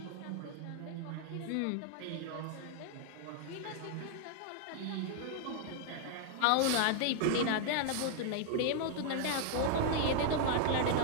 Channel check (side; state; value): both; different; correlation 0.00